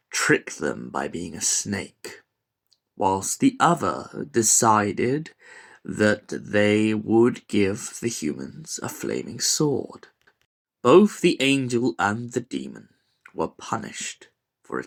trick them by being a snake, whilst the other decided that they would give the humans a flaming sword. Both the angel and the demon were punished for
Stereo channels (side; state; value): both; identical; correlation 1.00